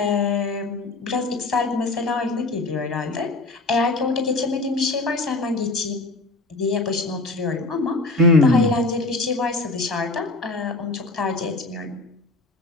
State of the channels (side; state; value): right; quieter; 3.1 dB